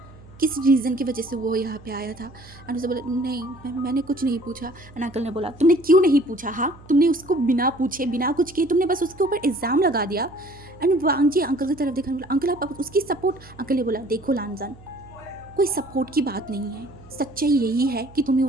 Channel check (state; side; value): noise; right; hum, 22 dB below the sound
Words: किस रीज़न की वजह से वो यहाँ पे आया था? एंड उसे बोला, नहीं मैंने कुछ नहीं पूछा। एंड अंकल ने बोला, तुमने क्यों नहीं पूछा? हाँ, तुमने उसको बिना पूछे बिना कुछ किए तुमने बस उसके ऊपर इल्ज़ाम लगा दिया। एंड वांग जी अंकल की तरफ देखा, बोला, अंकल आप उसकी सपोर्ट। अंकल ने बोला, देखो लानजान, कोई सपोर्ट की बात नहीं है, सच्चाई यही है कि तुम्हें